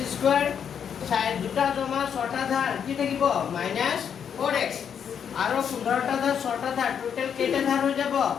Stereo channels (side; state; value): right; quieter; 7.9 dB